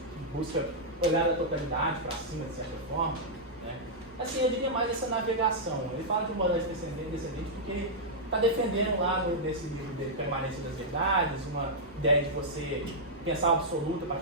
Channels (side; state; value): both; normal; correlation -0.08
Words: busca olhar a totalidade para cima, de certa forma, né? Assim, eu diria mais essa navegação. Ele fala de modalidade descendente porque ele está defendendo lá nesse livro dele, Permanência das Verdades, uma ideia de você pensar o absoluto a